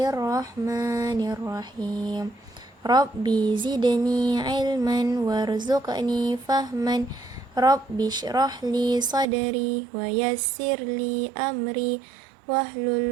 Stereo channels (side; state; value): left; drops out; at 9.2 s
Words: Rabbi zidni ilman warzuqni fahman. Rabbi shrah li sadri wa yassir li amri